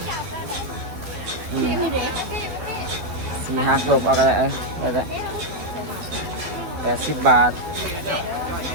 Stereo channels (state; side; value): late; left; 12 ms